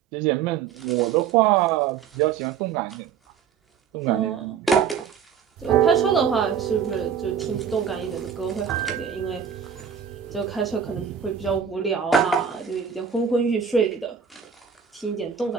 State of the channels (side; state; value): left; quieter; 7.4 dB